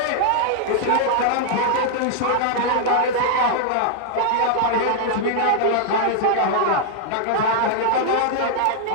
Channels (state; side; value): different; both; correlation -0.01